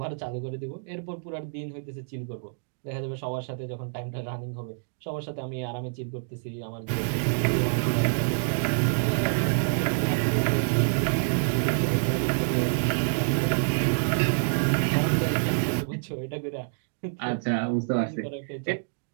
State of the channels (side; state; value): left; silent; digital silence